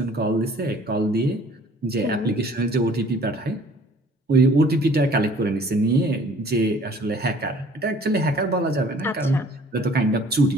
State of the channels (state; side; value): normal; both; correlation 0.53